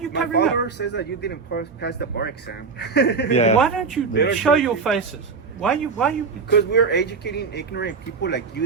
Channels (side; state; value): left; quieter; 5.0 dB